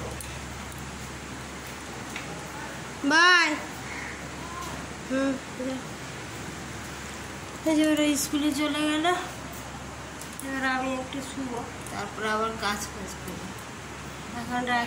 বাই। এই যে ওরা স্কুলে চলে গেল, এবার আমি একটু শুবো, তারপর আবার কাজ করবো। এখন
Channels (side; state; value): both; identical; correlation 1.00